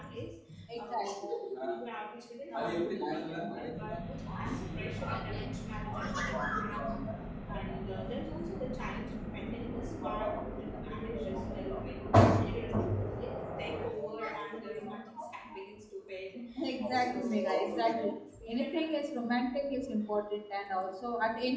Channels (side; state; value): both; identical; correlation 1.00